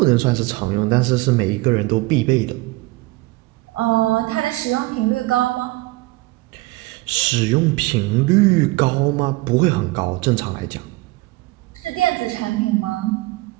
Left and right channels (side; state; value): left; quieter; 21.1 dB